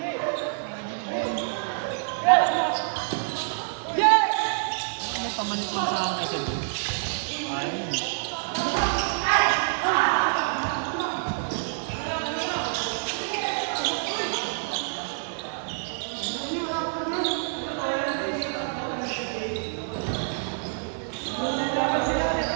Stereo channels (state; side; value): silent; left; digital silence